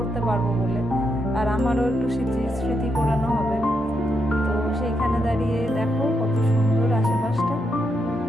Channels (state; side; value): normal; both; correlation 0.81